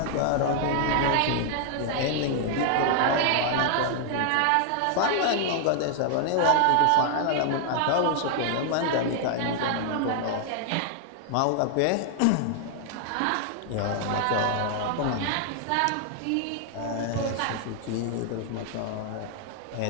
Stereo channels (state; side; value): different; both; correlation 0.00